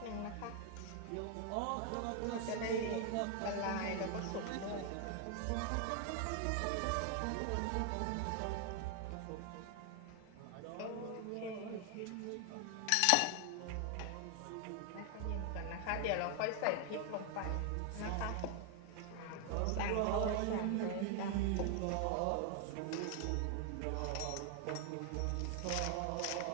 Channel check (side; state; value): both; different; correlation 0.00